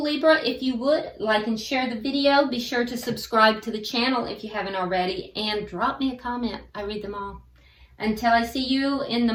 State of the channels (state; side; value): identical; both; correlation 1.00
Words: Libra. If you would, like and share the video. Be sure to subscribe to the channel if you haven't already. And drop me a comment. I read them all. Until I see you in the